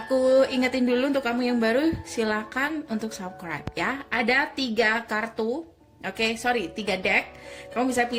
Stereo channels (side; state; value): both; identical; correlation 1.00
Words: ingetin dulu untuk kamu yang baru, silakan untuk subscribe ya. Ada 3 kartu, tiga deck. Kamu bisa